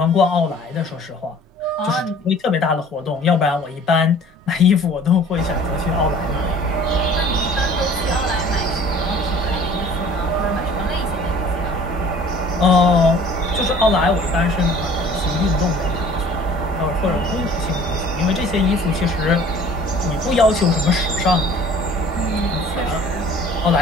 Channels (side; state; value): both; normal; correlation 0.50